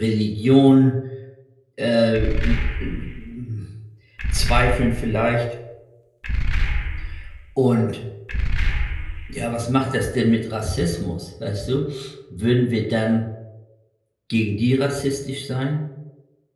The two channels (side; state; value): both; identical; correlation 1.00